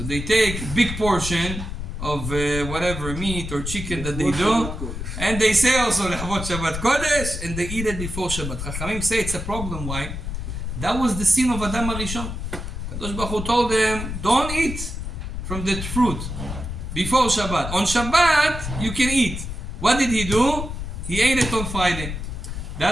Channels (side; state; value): left; noise; rumble, 6 dB below the sound